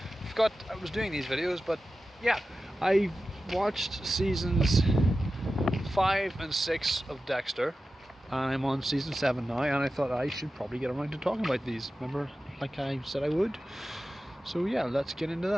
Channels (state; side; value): normal; both; correlation 0.93